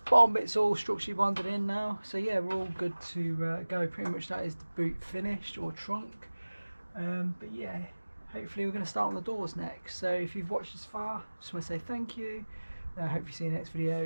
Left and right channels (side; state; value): both; inverted; correlation -1.00